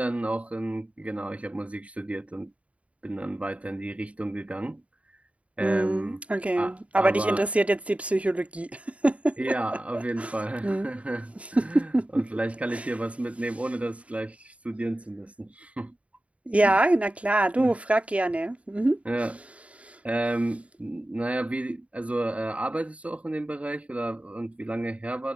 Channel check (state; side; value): late; left; 0.065 ms